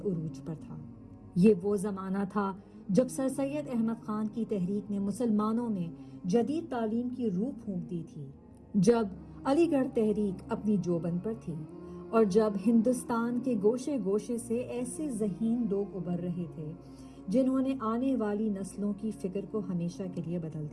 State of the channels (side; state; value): both; identical; correlation 1.00